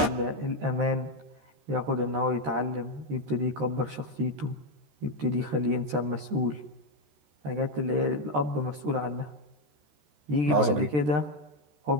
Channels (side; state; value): left; late; 13 ms